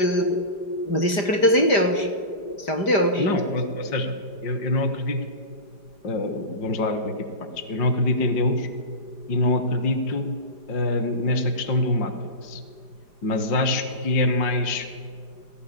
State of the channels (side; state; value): right; late; 5.0 ms